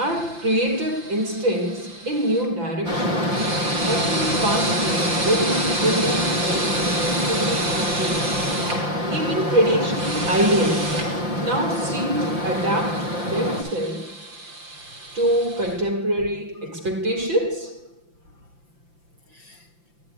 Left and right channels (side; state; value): left; late; 5.8 ms